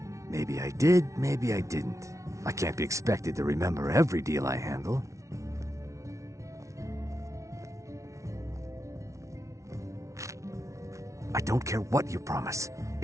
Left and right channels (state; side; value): late; left; 0.14 ms